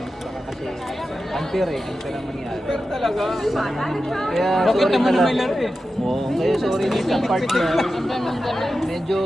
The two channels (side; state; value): both; normal; correlation 0.92